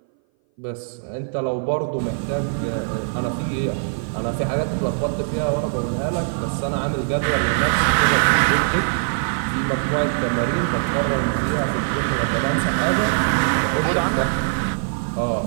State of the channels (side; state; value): left; silent; 59 dB below the other